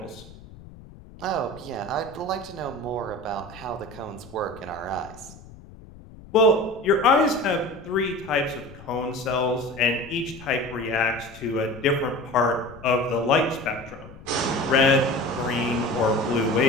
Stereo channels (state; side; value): noise; left; rumble, 19 dB below the sound